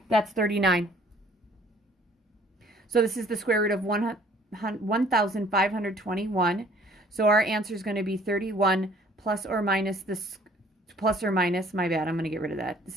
That's 39. So this is the square root of 1,521. So our answer is going to be 31 plus or minus this, plus or minus, my bad, I'm going to get rid of that.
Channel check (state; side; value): normal; both; correlation 0.56